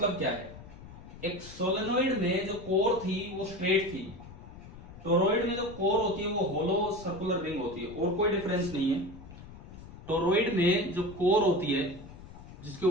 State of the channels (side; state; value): left; noise; rumble, 16 dB below the sound